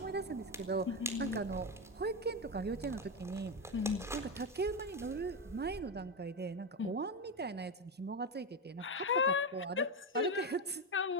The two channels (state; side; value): normal; both; correlation 0.12